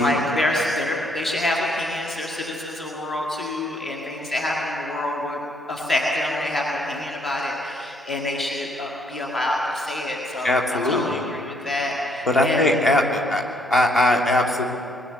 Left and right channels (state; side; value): normal; both; correlation 0.69